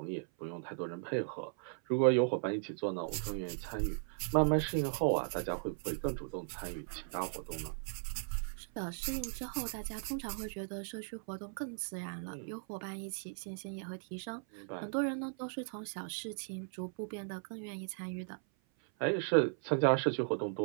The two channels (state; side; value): silent; left; 53 dB below the other